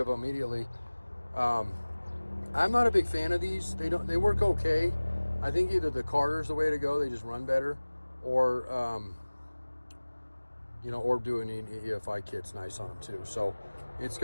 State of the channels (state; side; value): inverted; both; correlation -1.00